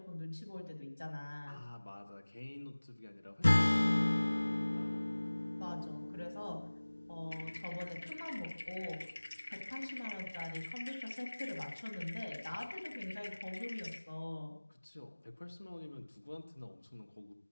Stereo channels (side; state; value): both; inverted; correlation -1.00